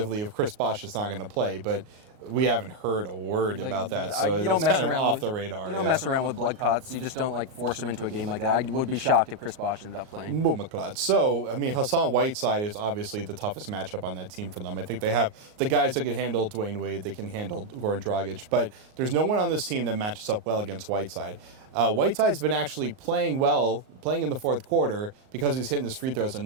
if Chris Bosh is not going to play, but we haven't heard a word about that, so it's kind of off the radar. You don't mess around with blood clots. You just don't force them into a game like that. I would be shocked if Chris Bosh ended up playing. So, I mean, Hassan Whiteside is obviously the toughest matchup on that team for them. I think they have the guys that can handle Dwayne Wade, they can handle Goran Dragic, but there's no one on this team that matches up well against Whiteside. Whiteside's been actually playing in the fourth quarter because he's hitting his free throws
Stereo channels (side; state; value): left; late; 38 ms